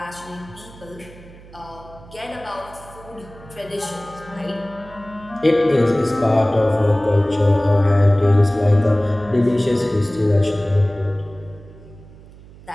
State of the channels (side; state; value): right; noise; hum, 21 dB below the sound